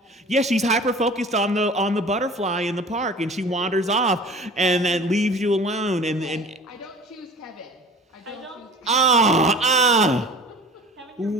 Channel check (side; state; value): both; normal; correlation 0.42